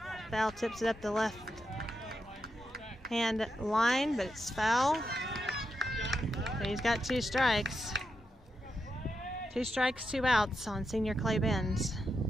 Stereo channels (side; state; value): both; normal; correlation 0.86